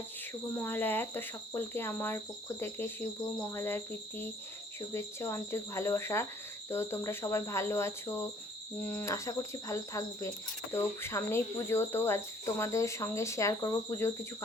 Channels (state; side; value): normal; both; correlation 0.59